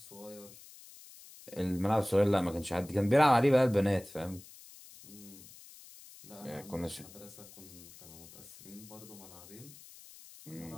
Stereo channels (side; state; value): left; noise; hiss, 19 dB below the sound